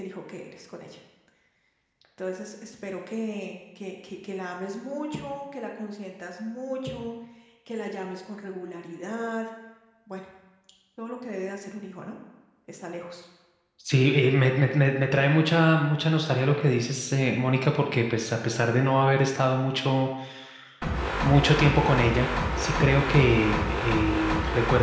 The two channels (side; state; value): both; identical; correlation 1.00